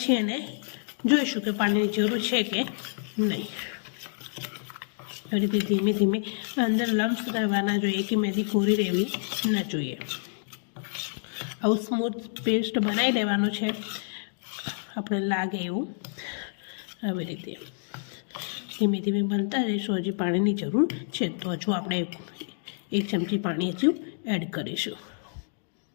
એને જોઈશું કે પાણીની જરૂર છે કે નહીં. એ રીતે ધીમે ધીમે અંદર લમ્સ રહેવાના જોઈએ, કે મહેંદી કોરી રહેવી ન જોઈએ. આવું સ્મૂથ પેસ્ટ બનાવી લેવાનું છે આપણે લાગે એવું. આવી રીતે ધીમે ધીમે બનતા રહીશું. હજી પાણીની જરૂર છે તો હજુ આપણે 1 ચમચી પાણી હજુ એડ કરીશું.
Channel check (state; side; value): silent; right; digital silence